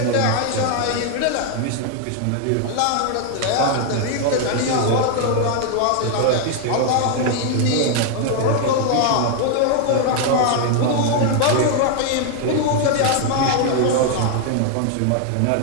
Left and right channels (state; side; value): different; both; correlation 0.00